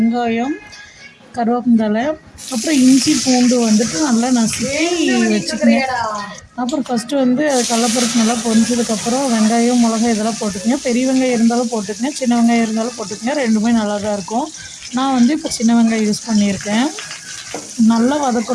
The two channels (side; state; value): both; identical; correlation 1.00